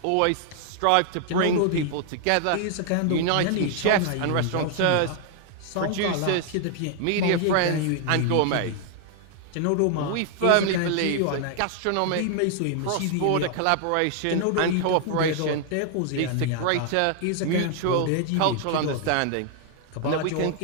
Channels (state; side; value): different; both; correlation 0.00